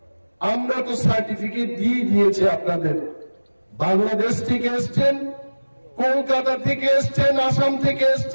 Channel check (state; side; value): inverted; both; correlation -1.00